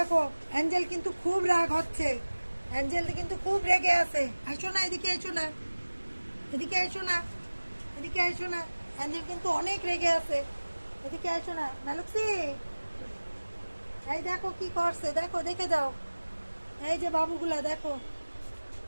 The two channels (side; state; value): both; inverted; correlation -1.00